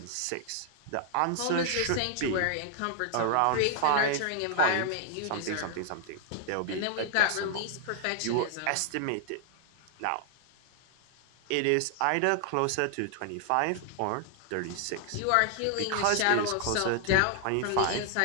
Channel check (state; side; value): different; both; correlation 0.00